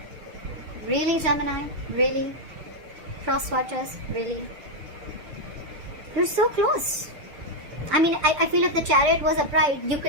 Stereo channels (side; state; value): left; late; 6.6 ms